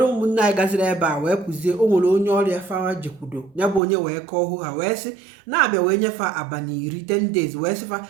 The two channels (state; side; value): drops out; left; at 3.8 s